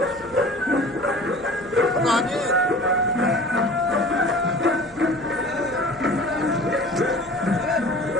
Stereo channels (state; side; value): noise; right; hum, 23 dB below the sound